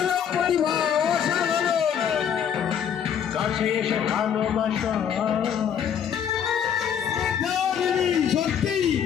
কাছে এসে ভালোবাসা। সত্যি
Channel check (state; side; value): quieter; right; 8.4 dB